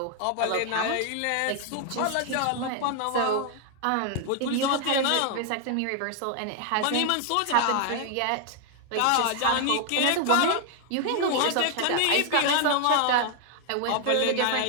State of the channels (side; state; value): both; different; correlation 0.00